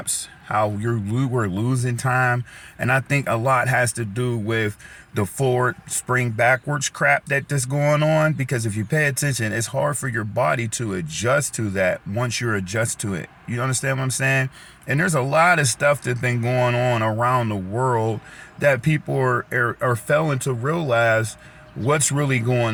How we're losing time, and I think a lot has to do with the forward spring backwards crap that's going on. Because if you pay attention, it's hard for your body to adjust to that once you're adjust to it. You understand what I'm saying? And there's a lot of stuff that's been going on around the world that people are failing to realize what's really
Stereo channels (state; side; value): identical; both; correlation 1.00